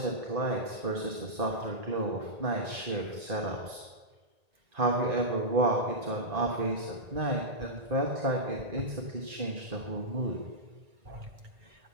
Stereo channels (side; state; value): left; late; 1.8 ms